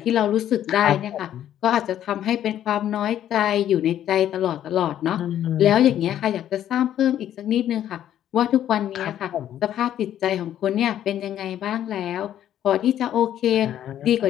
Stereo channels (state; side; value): quieter; right; 11.1 dB